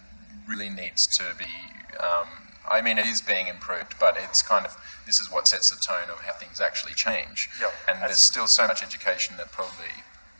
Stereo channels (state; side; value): inverted; both; correlation -1.00